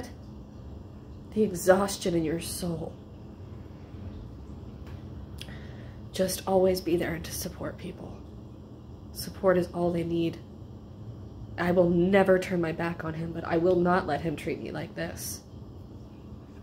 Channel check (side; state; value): both; identical; correlation 1.00